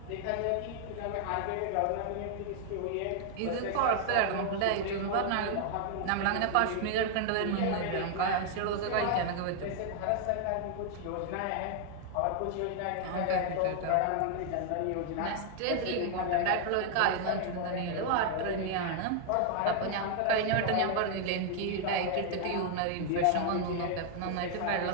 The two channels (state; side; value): different; both; correlation 0.00